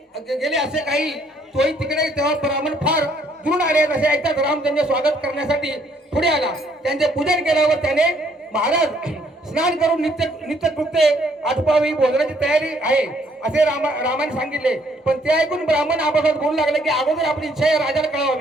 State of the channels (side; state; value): both; normal; correlation 0.66